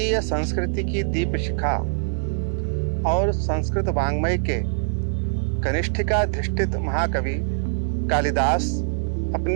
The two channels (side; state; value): left; silent; digital silence